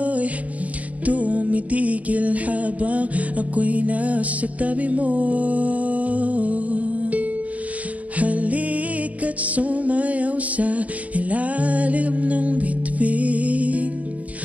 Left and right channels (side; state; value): left; late; 0.070 ms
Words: tumitigil habang ako'y nasa tabi mo. Halika't sumayaw sa ilalim ng bituin,